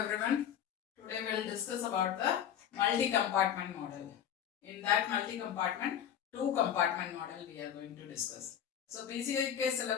Today we will discuss about the multi-compartment model. In that multi-compartment, two compartment model we are going to discuss. So PCI के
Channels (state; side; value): quieter; right; 9.5 dB